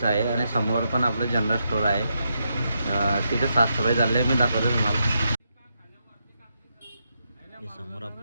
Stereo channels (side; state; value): both; inverted; correlation -0.82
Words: आहे आणि समोर पण आपलं जनरल स्टोअर आहे. तिथे साफसफाई चालली आहे, मी दाखवतो तुम्हाला. हे समोर